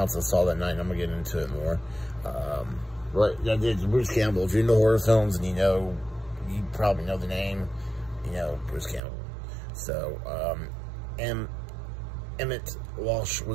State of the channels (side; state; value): left; drops out; at 9.0 s